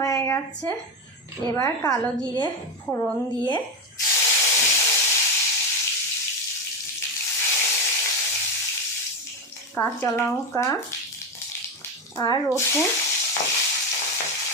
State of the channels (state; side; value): normal; both; correlation 0.13